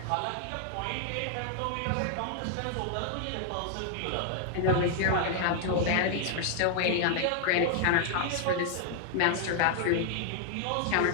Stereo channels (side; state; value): both; different; correlation 0.00